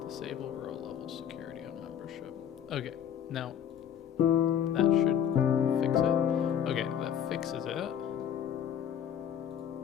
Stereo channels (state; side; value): quieter; right; 9.1 dB